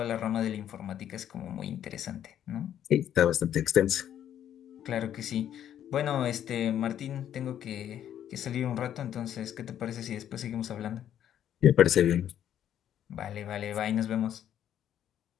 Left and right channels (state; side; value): quieter; right; 10.4 dB